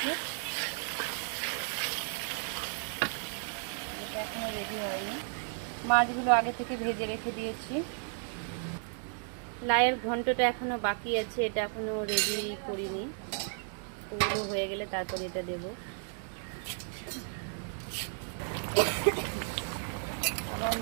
এটা এখনো রেডি হয়নি। মাছগুলো আগে থেকে ভেজে রেখে দিয়েছি। লাউয়ের ঘন্টটা এখনো বাকি আছে, এটা এখনো রেডি করিনি। ওগুলো হয়ে গেলে তারপর এটা দেব। আমার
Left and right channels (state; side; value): silent; left; 55 dB below the other